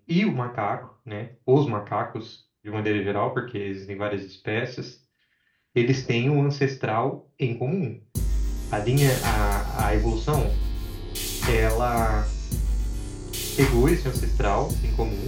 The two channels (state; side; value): identical; both; correlation 1.00